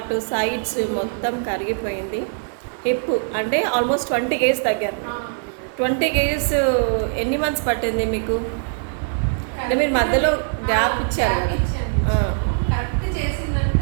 సైడ్స్ మొత్తం కరిగిపోయింది. హిప్ అంటే ఆల్మోస్ట్ 20 కేజీస్ తగ్గారు. 20 కేజీస్ ఎన్ని మంత్స్ పట్టింది మీకు? అంటే మీరు మధ్యలో గ్యాప్ ఇచ్చారు కదా?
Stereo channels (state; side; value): silent; left; digital silence